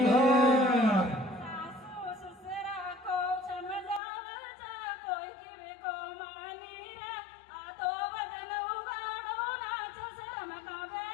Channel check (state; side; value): drops out; right; at 4.0 s